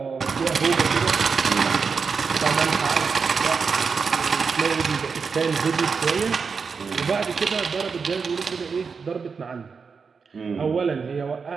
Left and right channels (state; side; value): quieter; left; 5.4 dB